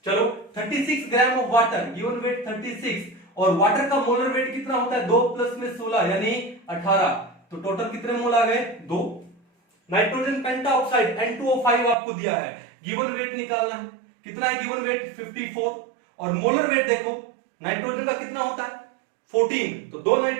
चलो 36 gram of water, given weight 36, और वाटर का मोलर वेट कितना होता है? 2 प्लस में 16 यानी 18, तो टोटल कितने मोल आ गए? 2। नाइट्रोजन पेंटाऑक्साइड N2O5 आपको दिया है, गिवन वेट निकालना है। कितना है गिवन वेट? 54, और मोलर वेट देखो, नाइट्रोजन का कितना होता है? 14, तो 2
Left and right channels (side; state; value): left; drops out; at 12.0 s